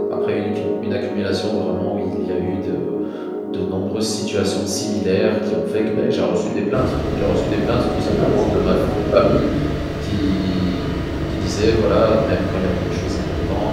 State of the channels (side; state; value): both; identical; correlation 1.00